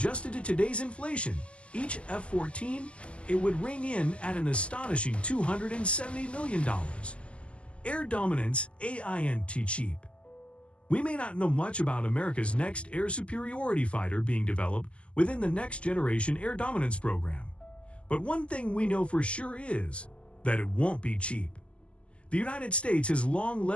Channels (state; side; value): late; right; 0.056 ms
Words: to today's inflation, each F-14, it would ring in at an astonishing $270 million. Air dominance ain't cheap. We may not know much about America's next air superiority fighter being developed within the Next Generation Air Dominance program. But one thing we know for sure is that it won't be cheap. The United States has long